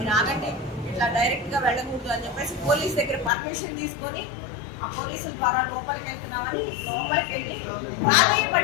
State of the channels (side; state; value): right; drops out; at 3.3 s